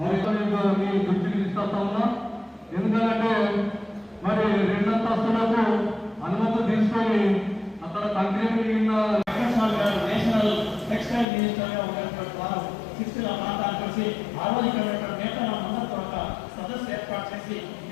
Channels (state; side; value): drops out; right; at 11.2 s